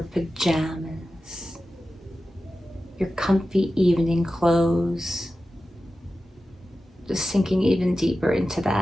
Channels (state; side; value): normal; both; correlation 0.93